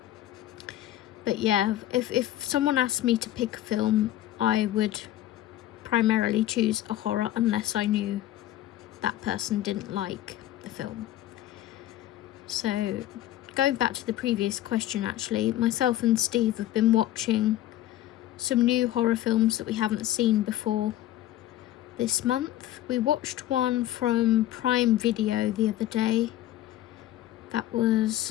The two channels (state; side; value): quieter; right; 13.6 dB